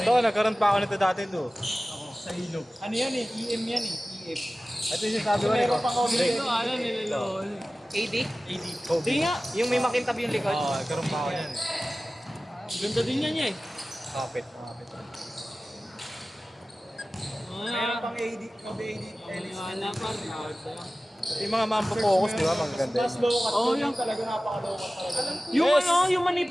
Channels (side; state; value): both; normal; correlation 0.96